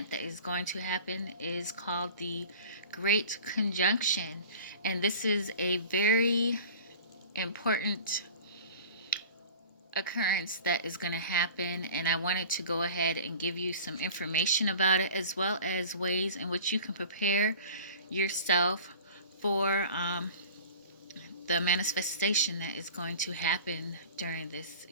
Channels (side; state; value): both; inverted; correlation -0.41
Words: that is going to happen is called the Great Conjunction. And this is a very important occurrence that is going to happen, and I wanted to go ahead and give you some information about it, as well as ways in which you can prepare yourself for the manifestation that is going to happen during this